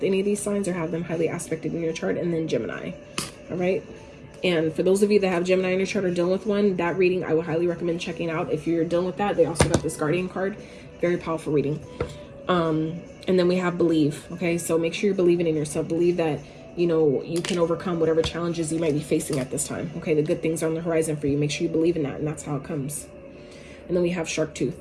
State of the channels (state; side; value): identical; both; correlation 1.00